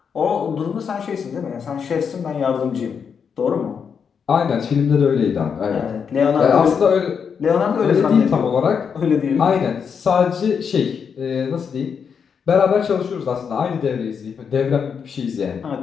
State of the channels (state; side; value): quieter; right; 6.7 dB